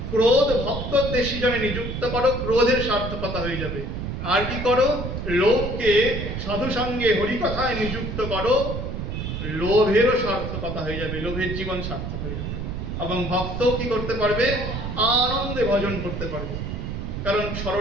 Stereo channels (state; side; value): noise; right; rumble, 5 dB below the sound